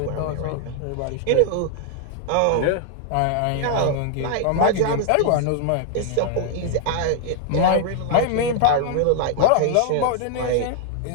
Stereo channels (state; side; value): different; both; correlation -0.01